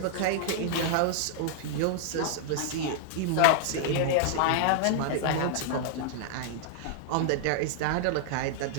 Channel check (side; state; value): both; different; correlation -0.01